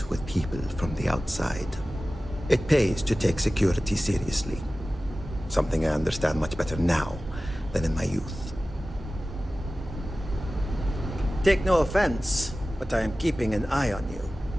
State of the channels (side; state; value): both; normal; correlation 0.96